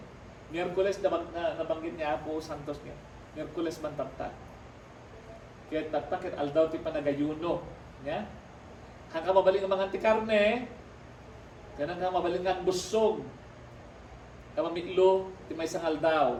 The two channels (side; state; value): both; identical; correlation 1.00